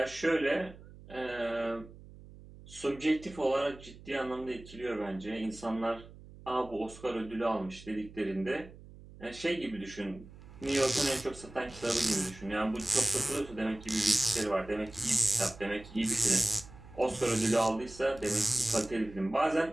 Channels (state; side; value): noise; right; hum, 18 dB below the sound